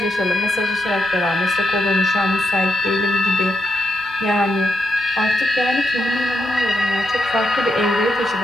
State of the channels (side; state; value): both; normal; correlation 0.82